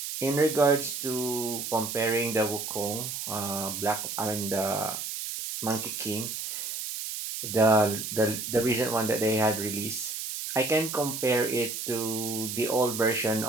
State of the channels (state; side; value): noise; right; hiss, 5 dB below the sound